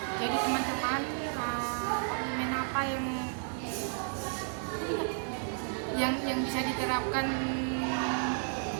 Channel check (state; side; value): silent; left; 56 dB below the other